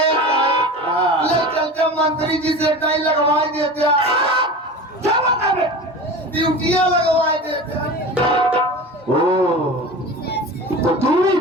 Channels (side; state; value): both; normal; correlation 0.32